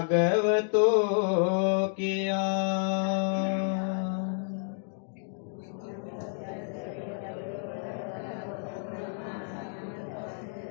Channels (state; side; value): silent; right; digital silence